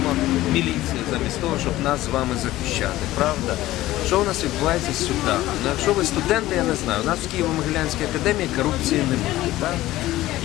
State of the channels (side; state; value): right; quieter; 16.1 dB